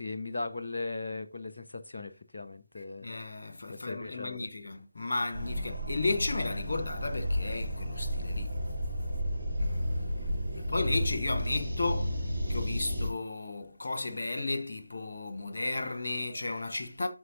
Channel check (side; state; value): both; inverted; correlation -0.91